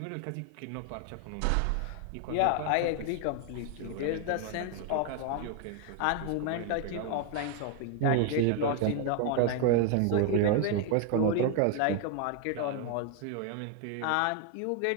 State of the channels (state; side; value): different; both; correlation 0.00